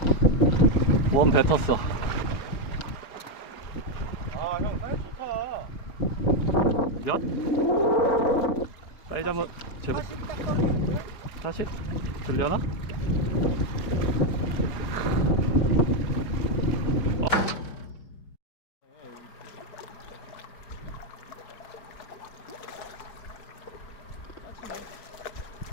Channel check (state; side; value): late; right; 4.7 ms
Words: 웜 뱉었어. 아, 형 사이즈 좋다. 몇? 사이즈 한번 제보. 40 딱 떨어지는데? 40? 들려나?